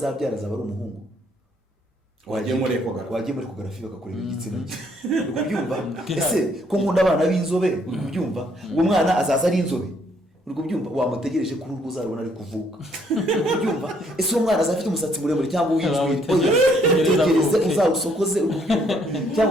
azaba ari umuhungu, wagiye muri ekogarafi bakakureba igitsina cye, ubyumva? Ese ko nkunda abana b'inzobe, ubyumva? Uwo mwana azaza ari inzobe, ubyumva? Wamutegereje kuri urwo uzarubona ari kuvuka, ubyumva? Ese uwo mwana azafite umusatsi muremure cyangwa uw'injwiri, oya tegereze uzawusokoze, ubyumva?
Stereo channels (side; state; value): both; normal; correlation 0.68